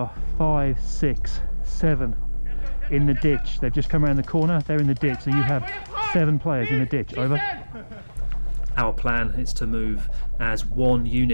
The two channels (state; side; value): inverted; both; correlation -1.00